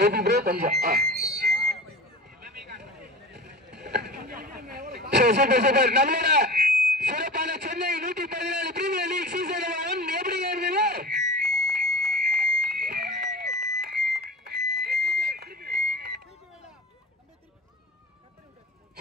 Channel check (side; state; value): both; normal; correlation 0.33